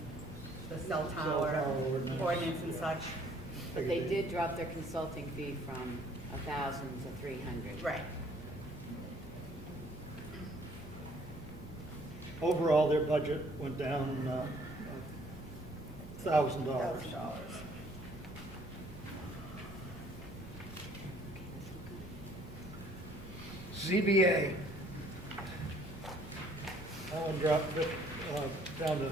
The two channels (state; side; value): normal; both; correlation 0.60